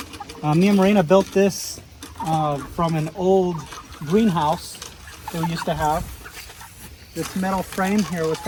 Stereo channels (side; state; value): both; identical; correlation 1.00